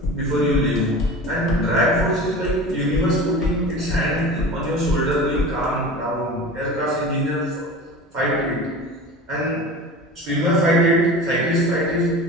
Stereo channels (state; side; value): normal; both; correlation 0.35